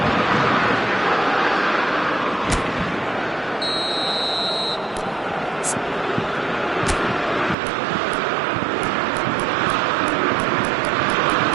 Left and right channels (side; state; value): left; drops out; at 7.6 s